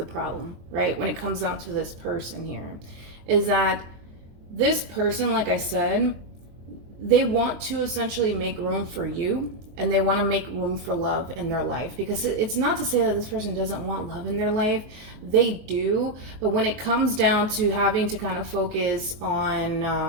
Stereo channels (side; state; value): left; late; 23 ms